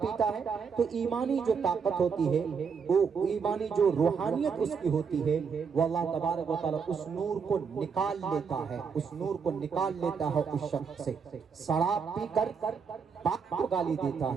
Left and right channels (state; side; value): quieter; left; 6.0 dB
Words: پیتا ہے تو ایمانی جو طاقت ہوتی ہے، وہ ایمانی جو روحانیت اس کی ہوتی ہے، وہ اللہ تبارک و تعالی اس نور کو نکال لیتا ہے، اس نور کو نکال لیتا ہے اس شخص سے. شراب پی کر باپ کو گالی دیتا